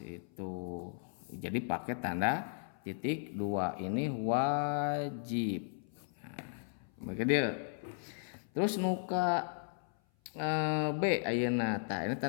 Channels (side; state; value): right; silent; 54 dB below the other